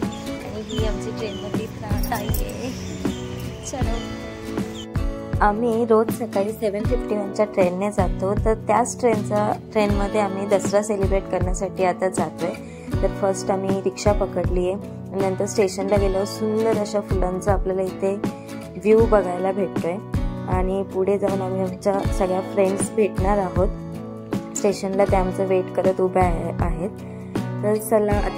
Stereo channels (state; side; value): identical; both; correlation 1.00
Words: आणि ही आमची ट्रेनमधली ताई आहे. चलो. आम्ही रोज सकाळी 7:51च्या ट्रेनने जातो, तर त्याच ट्रेनमध्ये आम्ही दसरा सेलिब्रेट करण्यासाठी आता जातोय. तर फर्स्ट आम्ही रिक्षा पकडली आहे, नंतर स्टेशनला गेलो. सुंदर अशा फुलांचा आपल्याला इथे व्ह्यू बघायला भेटतोय आणि पुढे जाऊन आम्ही आमच्या सगळ्या फ्रेंड्स भेटणार आहोत. स्टेशनला त्या आमचं वेट करत उभ्या आहेत. तर चला